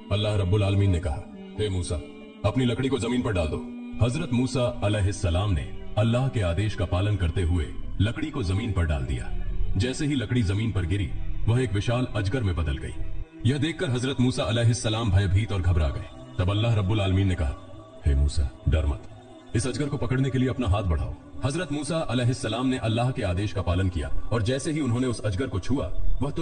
अल्लाह रब्बुल आलमीन ने कहा, हे मूसा, अपनी लकड़ी को जमीन पर डाल दो। हजरत मूसा अलैहिस्सलाम ने अल्लाह के आदेश का पालन करते हुए लकड़ी को जमीन पर डाल दिया। जैसे ही लकड़ी जमीन पर गिरी, वह एक विशाल अजगर में बदल गई। यह देखकर हजरत मूसा अलैहिस्सलाम भयभीत और घबरा गए। तब अल्लाह रब्बुल आलमीन ने कहा, हे मूसा, डर मत, इस अजगर को पकड़ने के लिए अपना हाथ बढ़ाओ। हजरत मूसा अलैहिस्सलाम ने अल्लाह के आदेश का पालन किया और जैसे ही उन्होंने उस अजगर को छुआ, वह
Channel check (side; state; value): both; identical; correlation 1.00